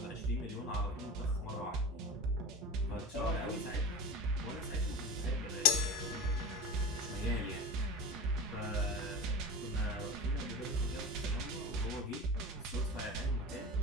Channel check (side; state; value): both; normal; correlation 0.33